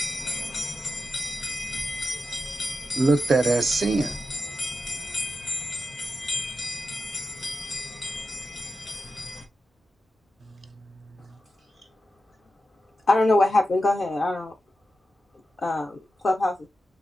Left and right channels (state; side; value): normal; both; correlation 0.90